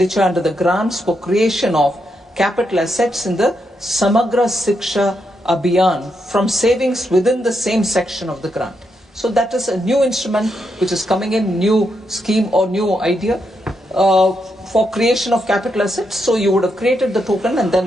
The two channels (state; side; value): normal; both; correlation 0.82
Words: under the grants for creation of capital assets in the Samagra Shiksha Abhiyan from savings within the same section of the grant. So that is a new instrument which is coming in, new scheme or new idea for creation of capital assets. So you would have created the token and